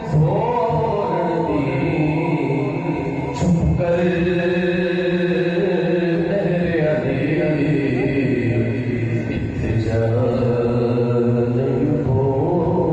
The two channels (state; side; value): identical; both; correlation 1.00